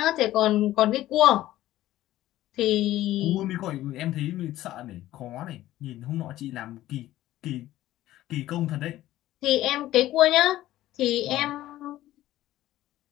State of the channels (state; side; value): quieter; right; 14.8 dB